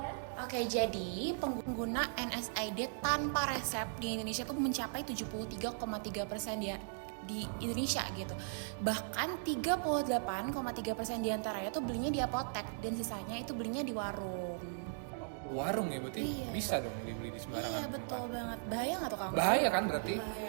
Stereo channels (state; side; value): silent; left; digital silence